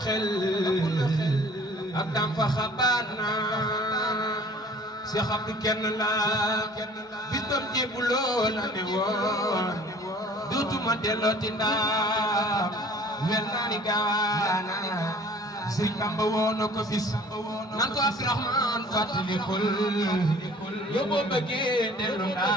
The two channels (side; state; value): both; normal; correlation 0.50